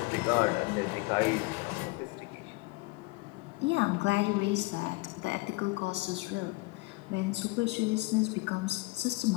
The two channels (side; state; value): right; quieter; 23.5 dB